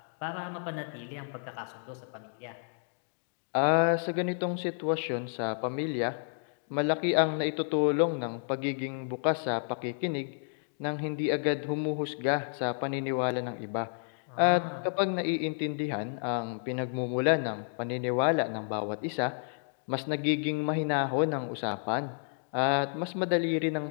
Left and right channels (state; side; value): silent; right; digital silence